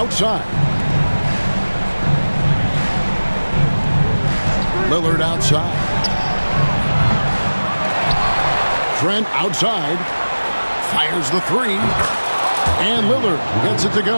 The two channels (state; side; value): inverted; both; correlation -1.00